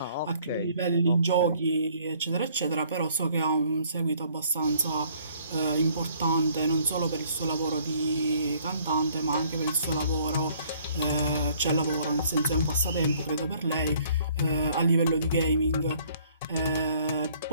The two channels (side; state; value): both; inverted; correlation -0.60